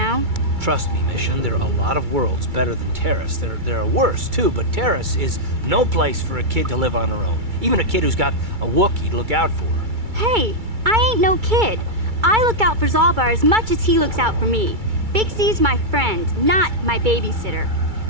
Trust me, Mission, there are a lot of worlds better than Terrace. There are worse, too, but Terrace is no place for a kid to live on her own. Even a kid who's got a Wookiee to look out for. Hey, I ain't no kid. I look out for Zalbar as much as he looks out for me. Big Z's my friend, not my babysitter.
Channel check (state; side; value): late; left; 2.3 ms